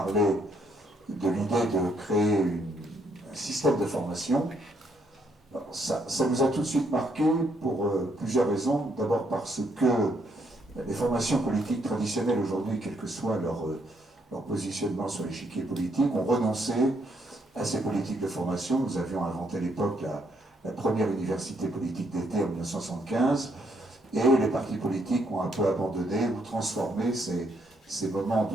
de l'idée de créer un système de formation. Alors, ça nous a tout de suite marqué pour plusieurs raisons. D'abord parce que les formations politiques traditionnelles aujourd'hui, quel que soit leur positionnement sur l'échiquier politique, ont renoncé à ces politiques de formation. Nous avions inventé à l'époque la première université politique d'été en 1975, et les partis politiques ont un peu abandonné ou transformé ces moments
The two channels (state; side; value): normal; both; correlation 0.73